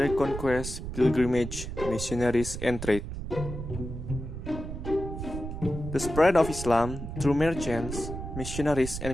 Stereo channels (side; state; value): right; noise; rumble, 7 dB below the sound